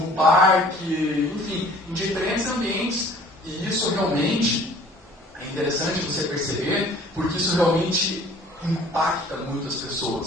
parque, enfim, em diferentes ambientes. E isso realmente é interessante você perceber, porque isso realmente impacta muitas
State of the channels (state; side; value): normal; both; correlation 0.51